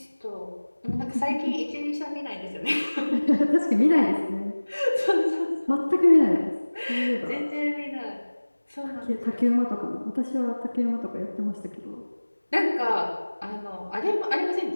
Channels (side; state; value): both; inverted; correlation -1.00